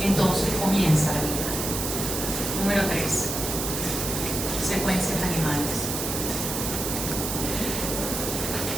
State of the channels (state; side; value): noise; right; hiss, 3 dB below the sound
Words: entonces comienza la vida. Número 3. Secuencias animales.